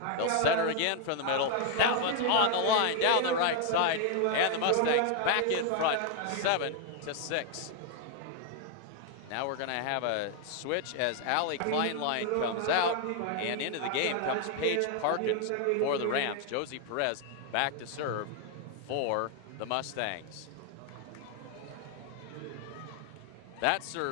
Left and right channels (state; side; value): different; both; correlation 0.01